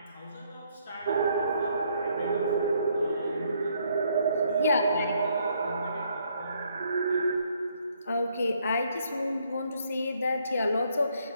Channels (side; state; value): both; inverted; correlation -0.70